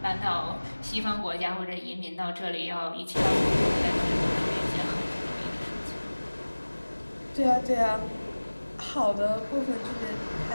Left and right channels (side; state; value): both; inverted; correlation -1.00